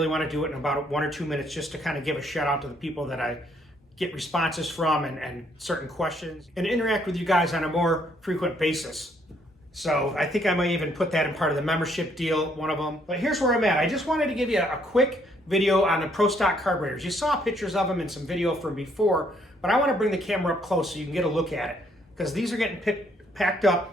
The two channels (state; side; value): normal; both; correlation 0.69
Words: want to do it in about 1 or 2 minutes just to kind of give a shout out to the people that I get responses from and certain questions and interact with you guys on a more frequent basis. So I think I might even put that in part of the membership deal, one of them. But here's where I'm at. I just wanted to give you a quick video on the Pro Stock carburetors. You saw pictures of them and some video from before, but I want to bring the camera up close so you can get a look at it, because these are getting packed